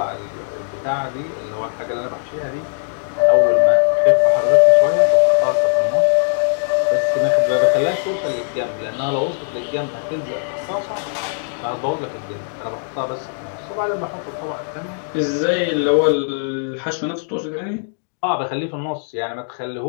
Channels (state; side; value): silent; right; digital silence